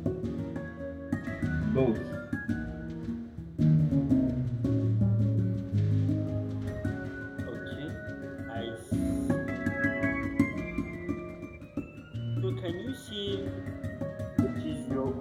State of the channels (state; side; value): identical; both; correlation 1.00